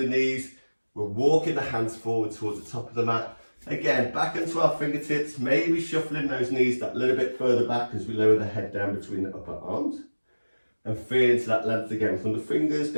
knees. We're walking the hands forward towards the top of the mat. Again, back into our fingertips, maybe shuffling those knees that little bit further back as we lower the head down between the upper arms. And feel into that length again from the fingers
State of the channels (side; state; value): both; inverted; correlation -1.00